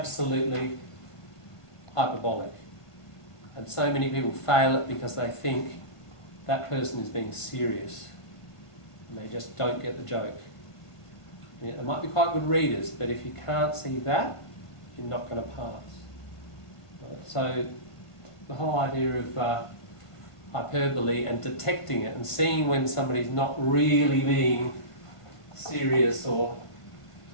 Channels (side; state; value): right; late; 1.5 ms